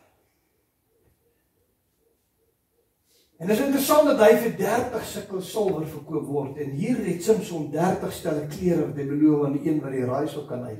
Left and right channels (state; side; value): identical; both; correlation 1.00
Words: En dit is interessant dat hy vir 30 sikkel silwer verkoop word. En hier het Samson 30 stelle klere wat hy beloof aan die een wat die raaisel kan